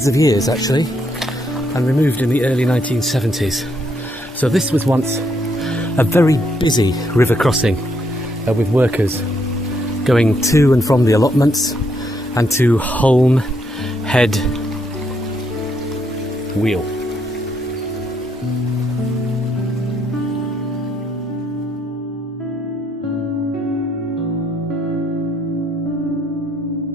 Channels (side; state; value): both; normal; correlation 0.74